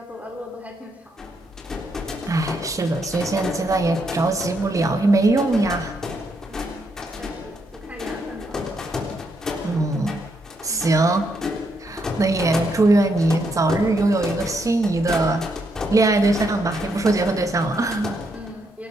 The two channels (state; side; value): normal; both; correlation 0.77